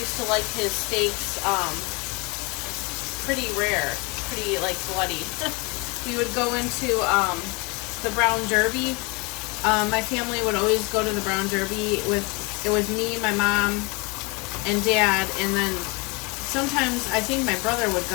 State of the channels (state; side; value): quieter; right; 28.8 dB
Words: used to like his steaks pretty rare, pretty like bloody. We would go into the Brown Derby. My family would always go to the Brown Derby it was me, my mom, and dad, and then sometimes I think my brother would